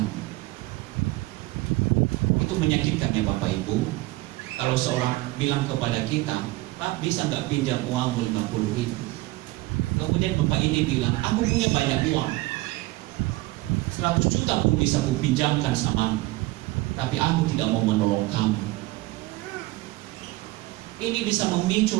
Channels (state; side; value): quieter; left; 20.0 dB